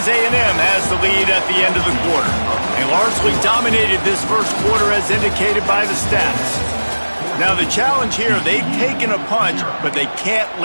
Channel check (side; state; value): both; inverted; correlation -1.00